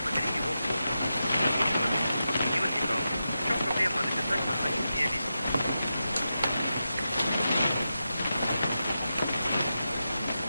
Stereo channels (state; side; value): inverted; both; correlation -0.89